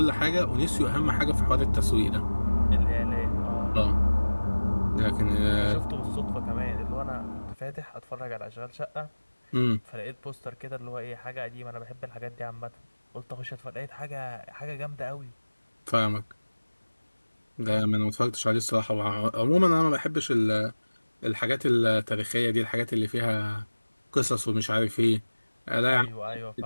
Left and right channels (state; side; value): inverted; both; correlation -1.00